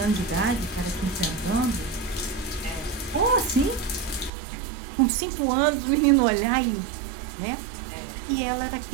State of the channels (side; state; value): left; drops out; at 4.3 s